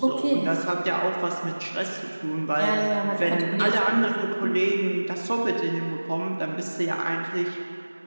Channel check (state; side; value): inverted; both; correlation -1.00